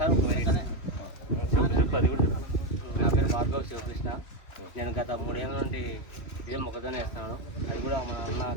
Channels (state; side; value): late; right; 3.2 ms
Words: ఒక వెరైటీ. నా పేరు భార్గవ్ శివకృష్ణ. నేను గత 3 ఏళ్ళ నుండి ఇదే మొక్కజొన్న వేస్తున్నాను. అది కూడా మన అన్న